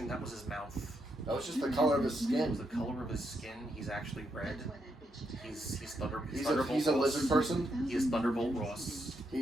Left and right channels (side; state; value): both; normal; correlation 0.80